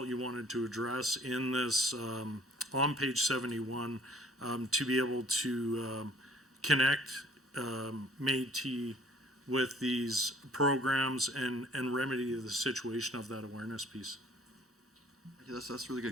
you wanted to address in this, on page 71, to be able to connect Métis with these programs and remedy the situation of that awareness piece? That's really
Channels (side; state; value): both; normal; correlation 0.55